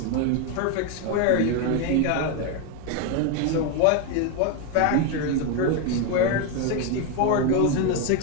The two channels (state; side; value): different; both; correlation 0.01